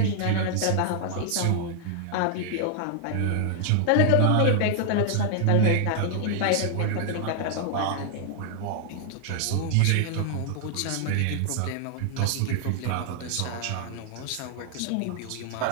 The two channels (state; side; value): different; both; correlation 0.00